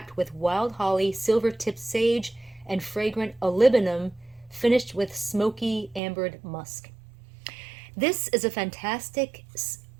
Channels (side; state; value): left; drops out; at 6.0 s